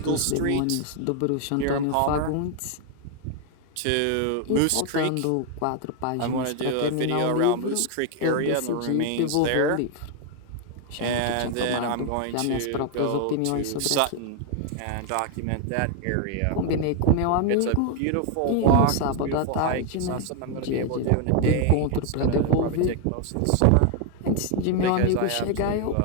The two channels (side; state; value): both; different; correlation 0.01